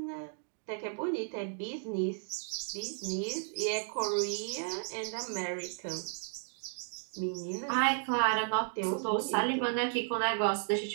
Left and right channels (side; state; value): left; silent; 55 dB below the other